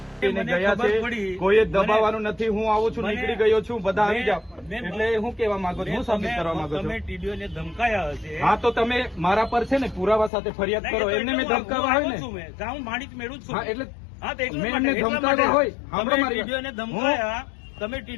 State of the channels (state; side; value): drops out; right; at 10.3 s